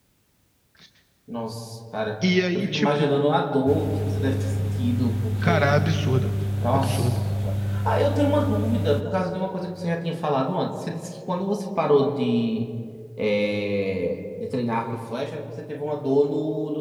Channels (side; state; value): both; identical; correlation 1.00